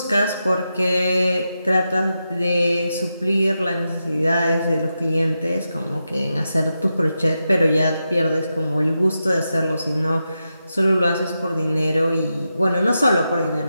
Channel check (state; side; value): inverted; both; correlation -0.88